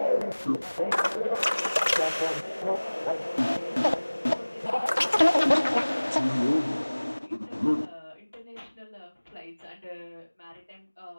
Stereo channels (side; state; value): both; inverted; correlation -1.00